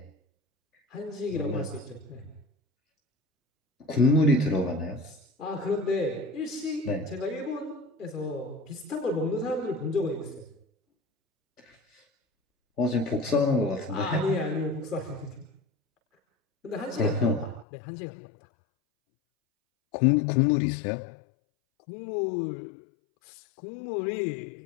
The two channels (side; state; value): right; drops out; at 17.7 s